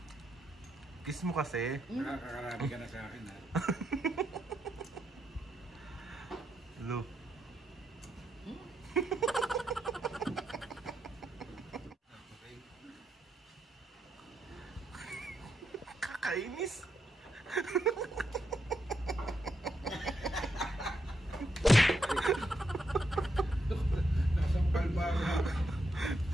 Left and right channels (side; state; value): both; normal; correlation 0.80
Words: Kiss mo kasi. Nakakarami ka na sa akin, ha? Hello. Kakainis. Nasampal ba ako?